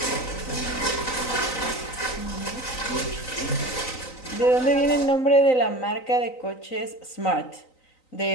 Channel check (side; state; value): right; late; 3.9 ms